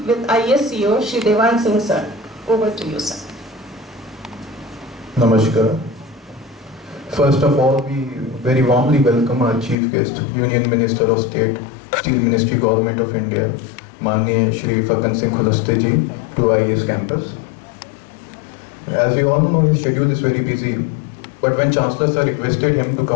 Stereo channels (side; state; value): right; drops out; at 9.8 s